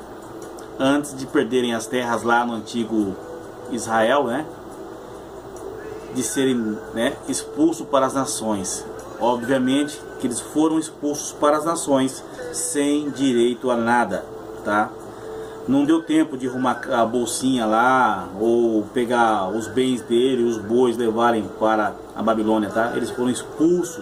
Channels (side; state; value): both; identical; correlation 1.00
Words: antes de perderem as terras lá no antigo Israel, né? De serem, né, expulsos para as nações. Obviamente que eles foram expulsos para as nações sem direito a nada, tá? Não deu tempo de arrumar a bolsinha lá ou pegar os bens dele, os bois, levarem para a Babilônia, tá? Eles foram